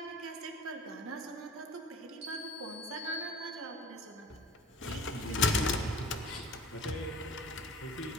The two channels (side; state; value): both; normal; correlation 0.44